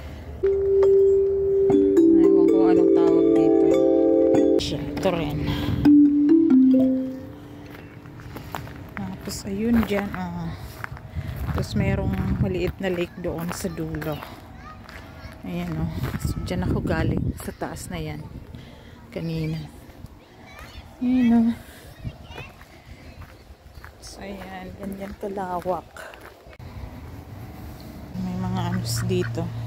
Ewan ko anong tawag dito. Ito rin. Tapos ayun dyan, tapos merong maliit na lake doon sa dulo. Ayan o. So, dyan ako galing sa taas na yan. Kanina. Ayan o. So, ayan. Ganyan kalawak. May mga anos dito.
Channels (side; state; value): both; identical; correlation 1.00